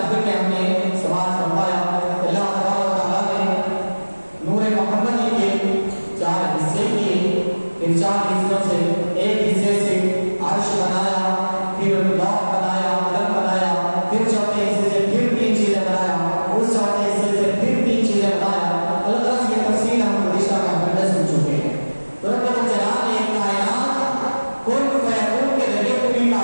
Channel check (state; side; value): inverted; both; correlation -1.00